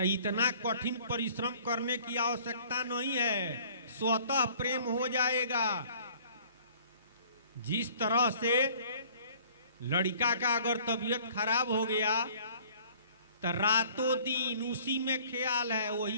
इतना कठिन परिश्रम करने की आवश्यकता नहीं है, स्वतः प्रेम हो जाएगा। जिस तरह से लड़का का अगर तबीयत खराब हो गया तो रातों दिन उसी में ख्याल है,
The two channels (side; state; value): both; inverted; correlation -0.53